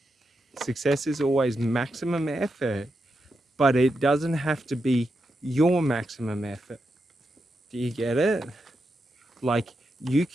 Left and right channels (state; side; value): normal; both; correlation 0.86